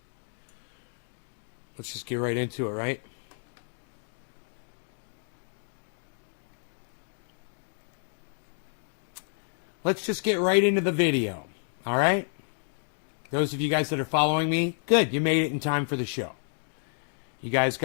let's just get right into it, right? Let's just get right into the video. All right? Those of you guys that are following me, good. You made it in time for the show. You guys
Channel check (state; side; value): silent; right; 58 dB below the other